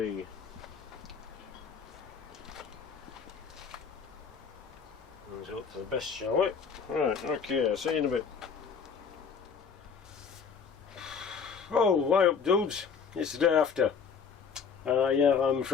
Let's hope for the best, shall we? Right, okay, I'll see you in a bit. Oh, why up, dudes? It's the day after. Yeah, I'm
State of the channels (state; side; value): quieter; right; 6.1 dB